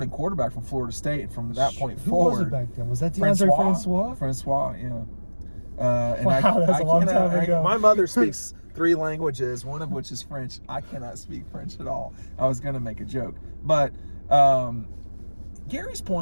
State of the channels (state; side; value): inverted; both; correlation -1.00